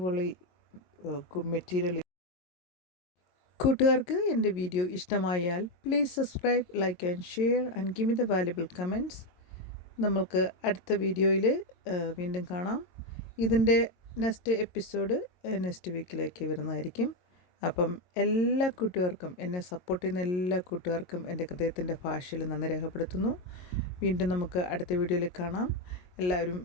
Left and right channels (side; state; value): right; late; 22 ms